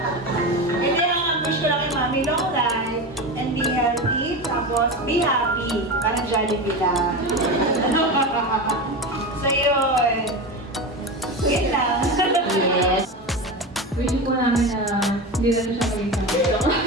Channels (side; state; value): both; normal; correlation 0.23